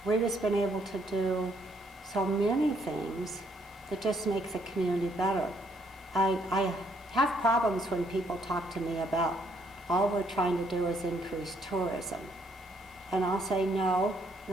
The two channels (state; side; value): normal; both; correlation 0.69